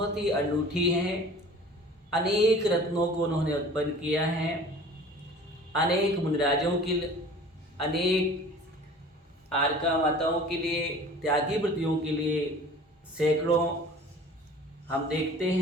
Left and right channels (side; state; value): both; normal; correlation 0.45